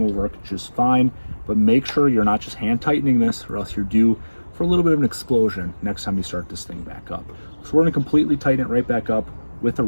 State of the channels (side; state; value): both; inverted; correlation -1.00